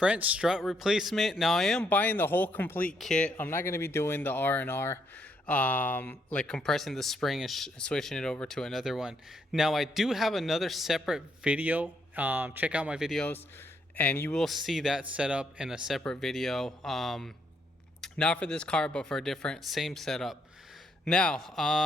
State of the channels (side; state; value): both; normal; correlation 0.74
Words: strut replacement. Now I am buying the whole complete kit. I'm not going to be doing the R&R, like compressing the spring and switching it over to another one. Now I do have another separate video. Check out my videos and you will see that setup in a separate video. Not for this car, but for a different, same setup.